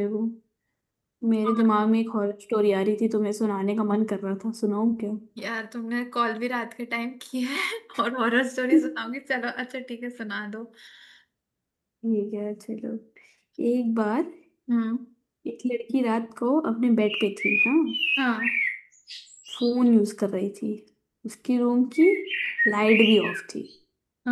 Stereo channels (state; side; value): identical; both; correlation 1.00